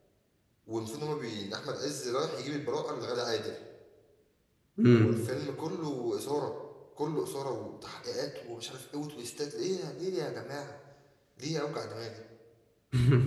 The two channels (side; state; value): both; identical; correlation 1.00